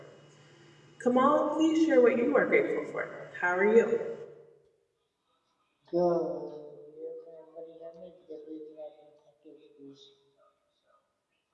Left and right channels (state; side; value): identical; both; correlation 1.00